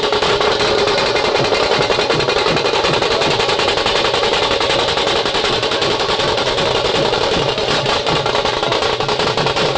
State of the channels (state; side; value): identical; both; correlation 1.00